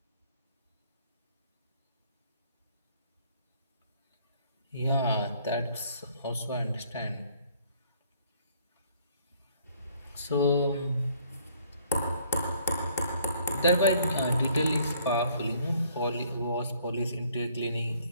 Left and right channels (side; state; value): both; inverted; correlation -0.62